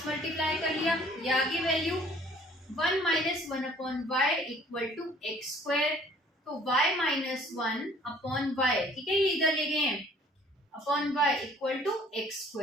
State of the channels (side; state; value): both; normal; correlation 0.56